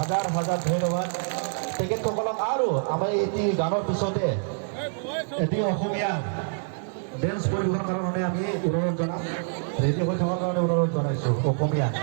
হাজাৰ ধন্যবাদ তেখেতসকলক। আৰু আমাৰ এটি গানৰ পিছতে এটি অসমীয়া ডেন্স পৰিৱেশনৰ কাৰণে আমি অনুৰোধ জনাম, ৰেডি হৈ থকাৰ কাৰণে অনুৰোধ জনাইছোঁ। অসমীয়া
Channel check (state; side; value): silent; left; digital silence